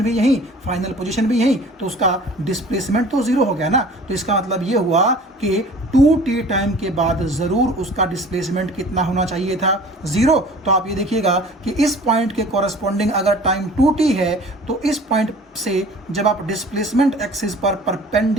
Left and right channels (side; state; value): both; normal; correlation 0.46